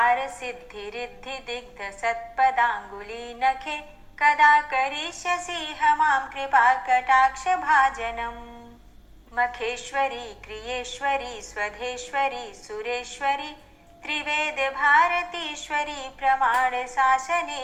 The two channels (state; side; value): identical; both; correlation 1.00